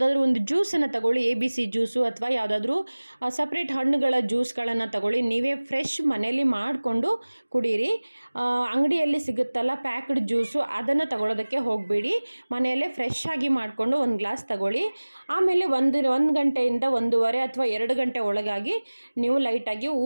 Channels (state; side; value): inverted; both; correlation -1.00